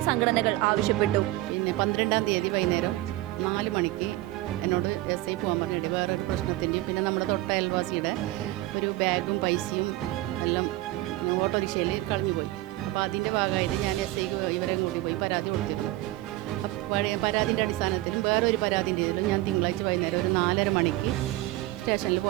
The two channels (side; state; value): left; quieter; 17.5 dB